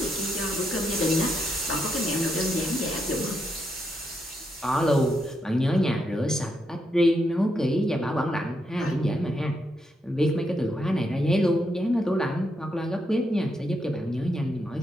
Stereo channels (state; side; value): normal; both; correlation 0.80